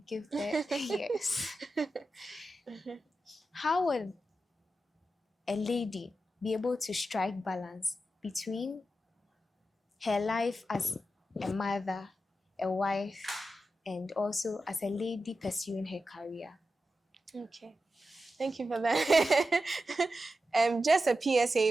give birth. Yes. How would a lady be able to strike balance between her life as a mother, a wife, and also as a lady pursuing her career? Okay. Thank you for that. Just a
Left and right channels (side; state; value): both; normal; correlation 0.90